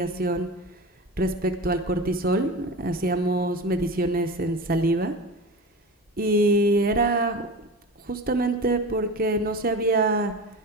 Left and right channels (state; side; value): normal; both; correlation 0.29